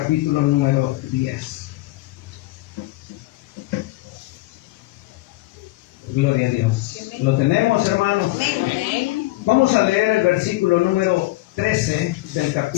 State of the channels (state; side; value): quieter; right; 19.4 dB